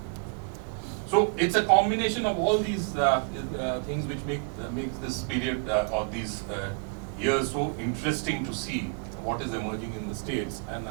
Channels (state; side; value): quieter; left; 38.2 dB